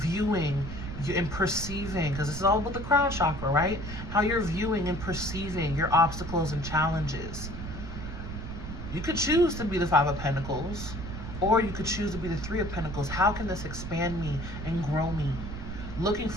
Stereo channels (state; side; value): noise; right; rumble, 8 dB below the sound